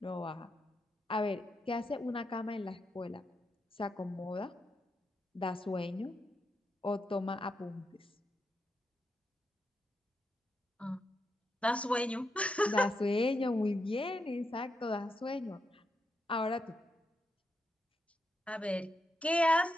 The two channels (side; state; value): both; normal; correlation 0.84